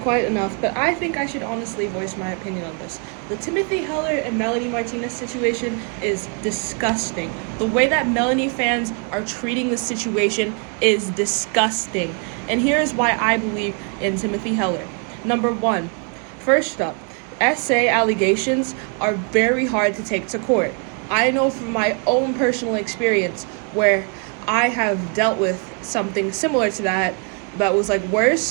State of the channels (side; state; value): left; quieter; 37.3 dB